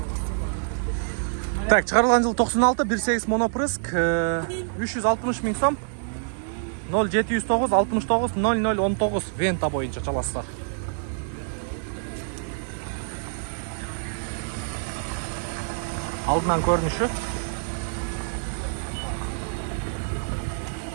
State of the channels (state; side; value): silent; left; 57 dB below the other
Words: Так, чыгарылган жыл 96, 1.8 монопрыск, 360 миң сом. 0709 69 0019 Vento боюнча чаласыздар. Алдынан көрүнүшү.